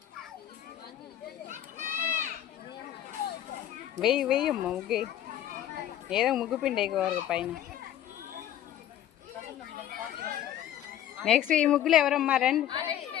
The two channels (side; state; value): right; quieter; 11.6 dB